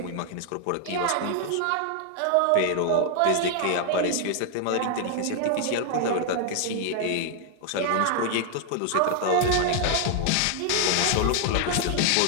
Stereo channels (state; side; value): different; both; correlation 0.00